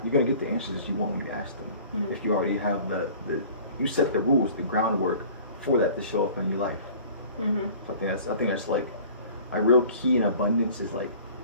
You're going to get the answers you want when you ask them. If you already have you set the rules, the groundwork for that to show up in your life. So I think that's like a real key in abundance, is like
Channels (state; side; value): inverted; both; correlation -0.47